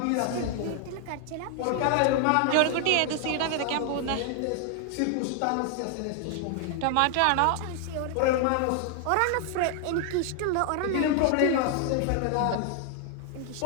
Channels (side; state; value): both; different; correlation 0.00